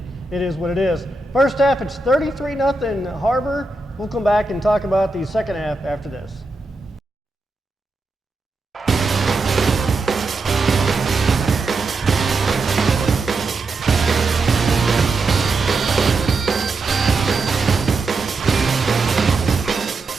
it is what it is. First half, it's 33-0 HarBer. We'll come back and talk about the second half after this.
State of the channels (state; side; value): quieter; left; 3.5 dB